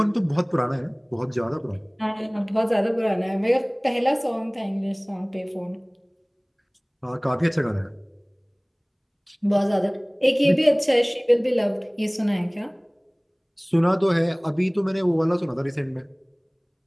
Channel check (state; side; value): identical; both; correlation 1.00